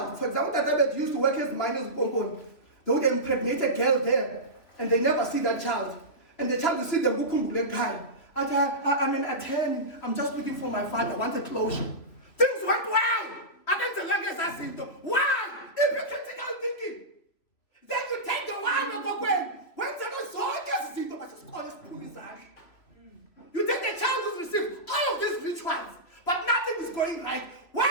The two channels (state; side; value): late; right; 3.2 ms